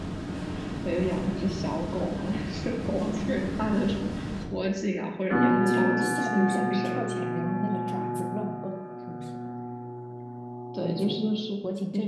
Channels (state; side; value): identical; both; correlation 1.00